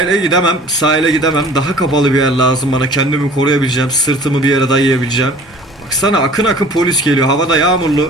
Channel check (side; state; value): both; normal; correlation 0.47